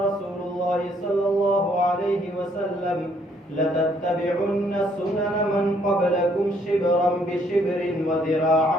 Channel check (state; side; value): normal; both; correlation 0.67